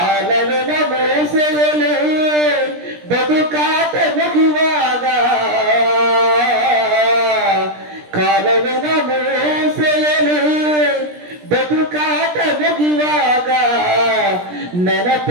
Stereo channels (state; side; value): late; left; 17 ms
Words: ಮೋಸೆಯಲು ಬದುಕಾಟ ಮುಗಿವಾಗ, ಕಾಲವಿನ ಮೋಸೆಯಲು ಬದುಕಾಟ ಮುಗಿವಾಗ